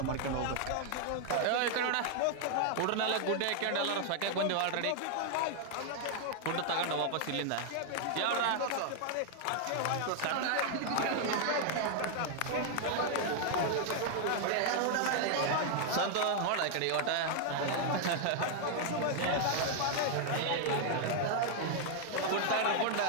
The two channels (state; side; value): different; both; correlation 0.00